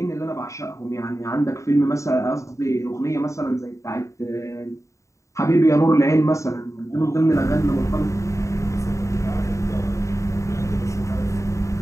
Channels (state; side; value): late; right; 0.15 ms